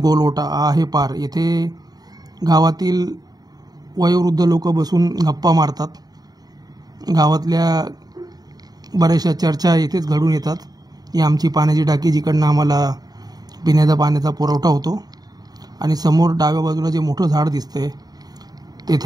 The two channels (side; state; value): left; late; 0.19 ms